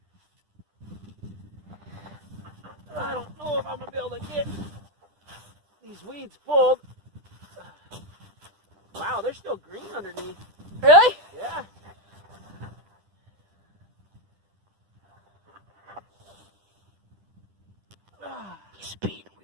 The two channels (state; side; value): late; left; 10 ms